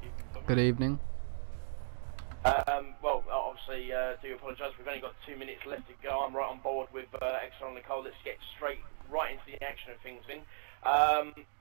Good evening. Well, obviously, do apologise. We've only got 2 minutes left to go. I'm right on board with Xrl Nicole. Let's get right into the action of things, then.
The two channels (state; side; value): silent; left; digital silence